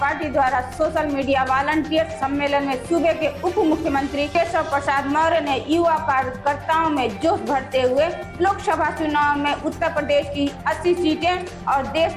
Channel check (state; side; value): identical; both; correlation 1.00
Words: पार्टी द्वारा सोशल मीडिया वॉलंटियर सम्मेलन में सूबे के उप मुख्यमंत्री केशव प्रसाद मौर्य ने युवा कार्यकर्ताओं में जोश भरते हुए लोकसभा चुनाव में उत्तर प्रदेश की 80 सीटें और देश